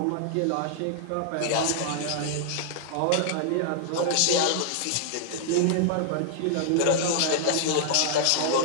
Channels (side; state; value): both; different; correlation -0.01